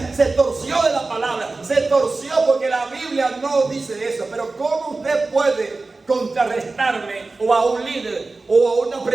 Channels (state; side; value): quieter; left; 3.5 dB